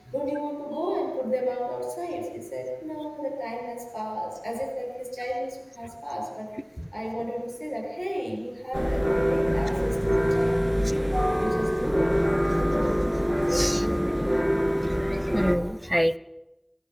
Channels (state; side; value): identical; both; correlation 1.00